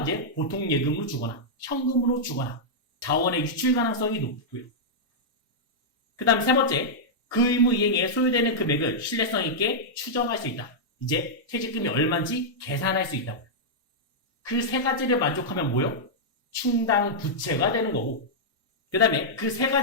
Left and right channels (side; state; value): both; normal; correlation -0.08